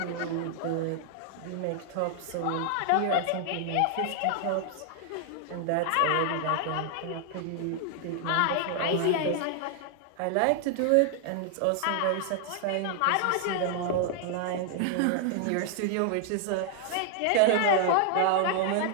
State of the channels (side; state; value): both; different; correlation 0.00